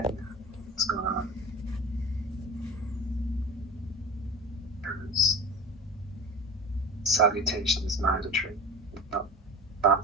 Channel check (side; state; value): both; normal; correlation 0.34